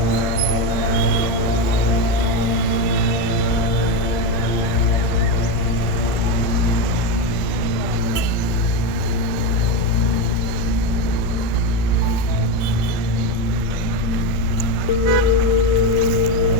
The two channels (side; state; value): right; late; 1.4 ms